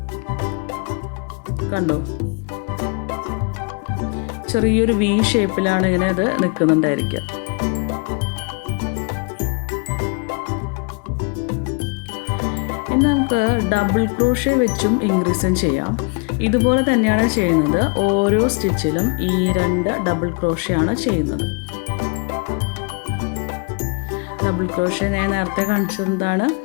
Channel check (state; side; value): quieter; right; 32.4 dB